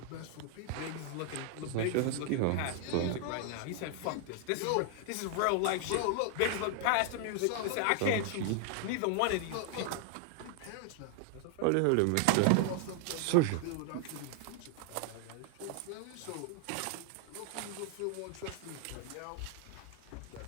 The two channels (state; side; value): different; both; correlation 0.00